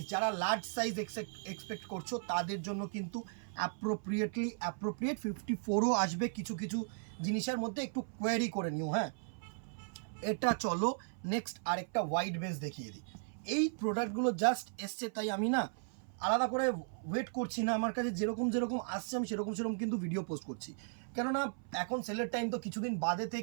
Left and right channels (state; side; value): silent; left; 54 dB below the other